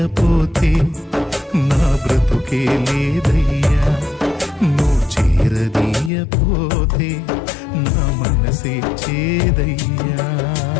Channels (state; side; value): drops out; right; at 6.1 s